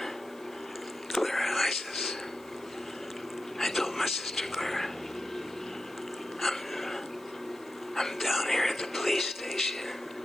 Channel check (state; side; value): noise; left; hiss, 26 dB below the sound